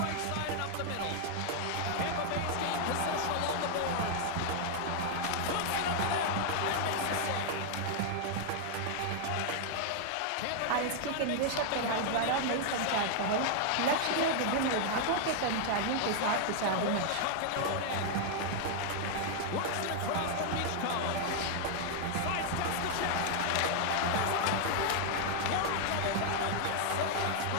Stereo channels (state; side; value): different; both; correlation 0.00